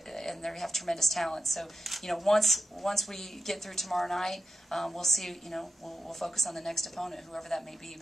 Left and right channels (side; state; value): both; normal; correlation 0.90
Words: have tremendous talent. So once we get through tomorrow night, we'll see. We'll focus on the next opponent, whoever that may be.